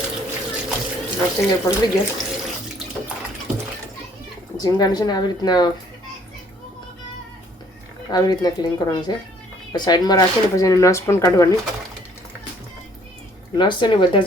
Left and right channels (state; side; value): normal; both; correlation 0.61